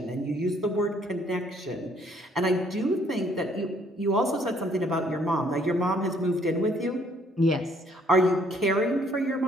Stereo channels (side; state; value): both; normal; correlation 0.65